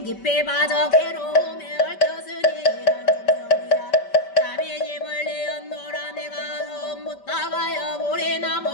깊이 빠져 괴로움에 얽혔으니 이런 중성이야 자비지 멀리 언노라 내가 처음 묻다가여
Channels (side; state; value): right; late; 5.1 ms